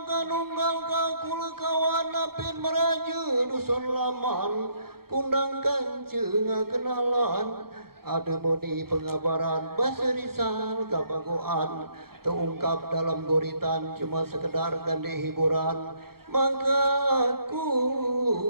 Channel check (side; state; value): left; late; 0.94 ms